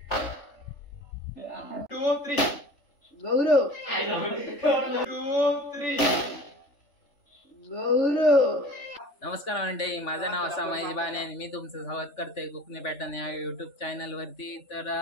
Two, three. गौरव Two, three. गौरव नमस्कार मंडळी, माझं नाव असा महेश बाने आणि मी तुमचं स्वागत करते कोकणी पॅटर्न या यूट्यूब चॅनलवरती. तर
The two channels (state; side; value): late; right; 3.5 ms